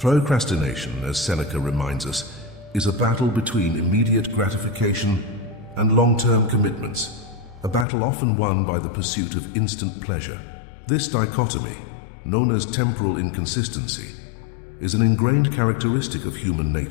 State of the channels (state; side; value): drops out; right; at 7.9 s